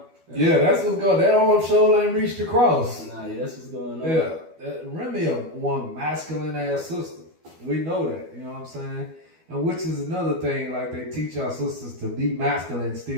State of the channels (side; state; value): left; late; 12 ms